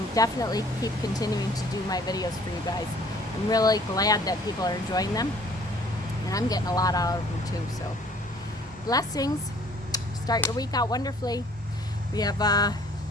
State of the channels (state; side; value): normal; both; correlation 0.56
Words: definitely keep continuing to do my videos for you guys. I'm really glad that people are enjoying them. And I'm getting a lot out of them too, so blessings. Start your week out wonderfully. We have,